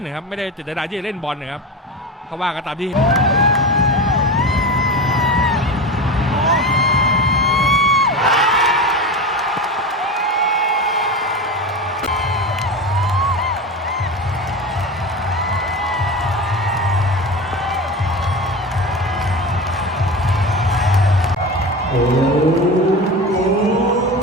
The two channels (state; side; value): normal; both; correlation 0.26